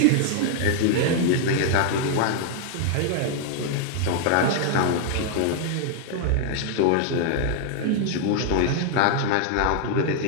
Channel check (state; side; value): different; both; correlation 0.00